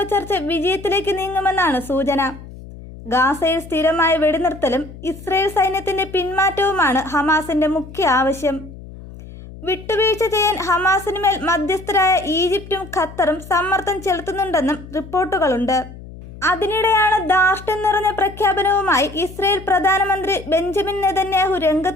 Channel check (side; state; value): left; noise; hum, 16 dB below the sound